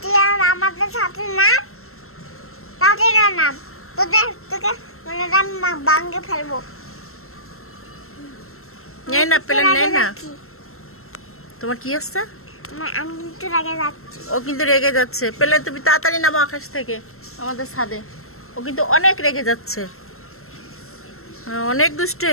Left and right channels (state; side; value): late; right; 0.62 ms